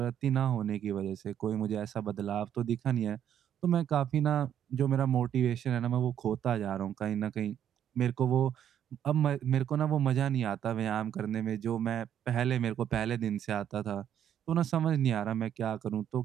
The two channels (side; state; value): left; quieter; 9.8 dB